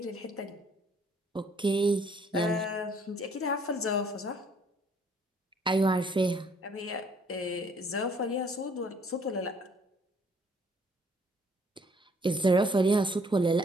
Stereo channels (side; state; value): both; normal; correlation 0.62